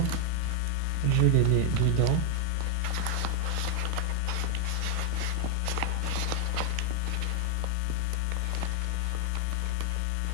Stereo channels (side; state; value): both; different; correlation 0.01